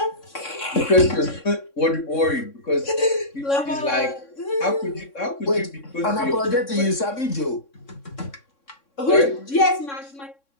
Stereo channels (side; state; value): right; late; 3.6 ms